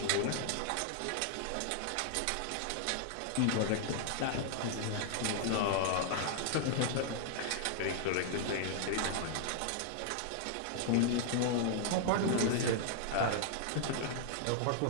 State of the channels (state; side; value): different; both; correlation -0.01